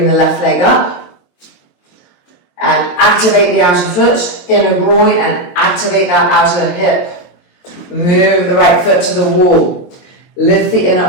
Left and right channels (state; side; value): late; right; 22 ms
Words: the left leg up. And activate the outer foot, inner groin, and activate that outer hip. Move the right foot to the wall. Lift the inner